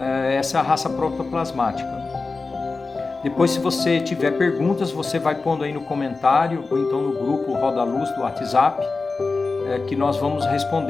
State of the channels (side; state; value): right; quieter; 4.0 dB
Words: é a raça protoplasmática. Depois, se você tiver perguntas, você vai pondo aí no comentário ou então no grupo Roda Luz do WhatsApp, que nós vamos